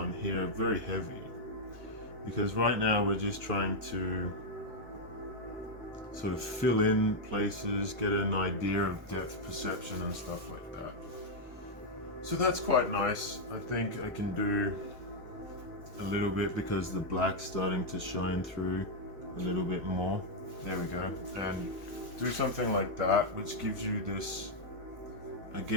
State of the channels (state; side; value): normal; both; correlation -0.02